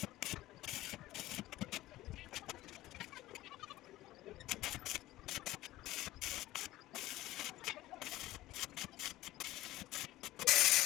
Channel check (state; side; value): quieter; right; 16.4 dB